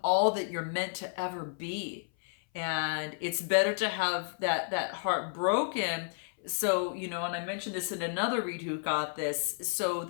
all that you're meant to ever be. And it's better to have that heart broken. So, and I mentioned this in another read who got this, so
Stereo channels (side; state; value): right; silent; 57 dB below the other